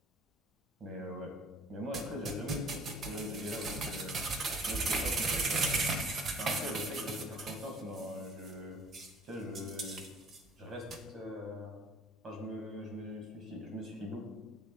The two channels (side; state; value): both; normal; correlation 0.53